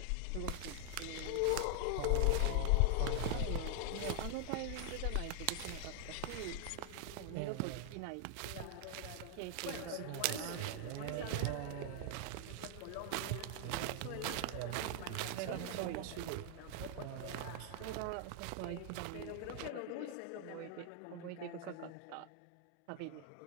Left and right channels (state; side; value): different; both; correlation 0.00